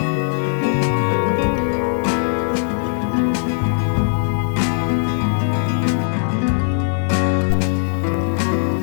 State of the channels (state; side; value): silent; right; digital silence